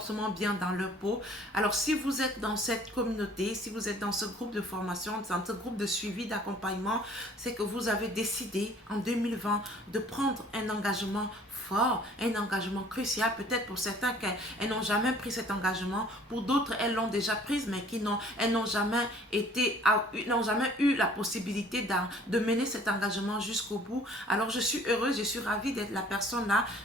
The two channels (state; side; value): normal; both; correlation 0.54